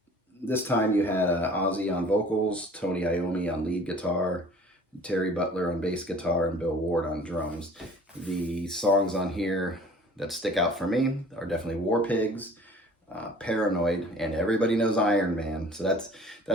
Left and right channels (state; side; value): normal; both; correlation 0.48